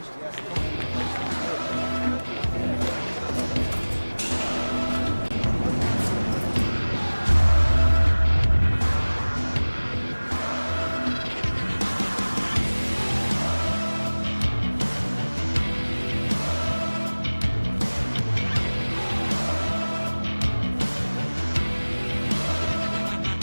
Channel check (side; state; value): both; inverted; correlation -1.00